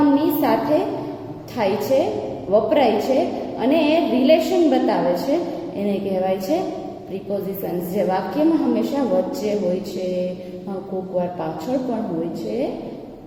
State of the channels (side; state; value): both; identical; correlation 1.00